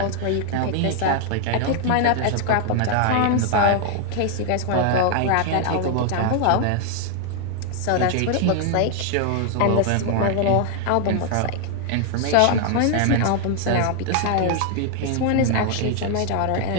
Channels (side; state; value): both; different; correlation 0.00